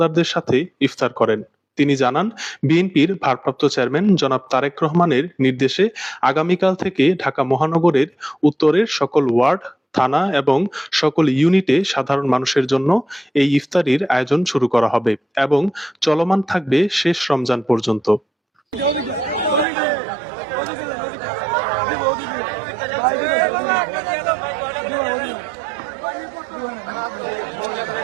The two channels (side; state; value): left; drops out; at 19.7 s